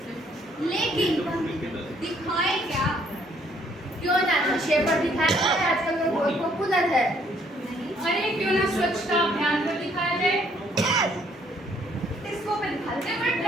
लेकिन दिखाए क्या? क्यों ना नशे पर दिखाया जाए, आजकल वो बहुत पॉपुलर है। अरे क्यों ना स्वच्छता अभियान पर दिखाया जाए, इसको पे दिखाते हैं, बड़ा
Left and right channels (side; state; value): both; normal; correlation 0.65